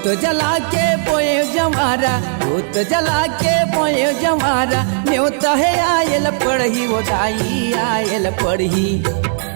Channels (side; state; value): left; silent; digital silence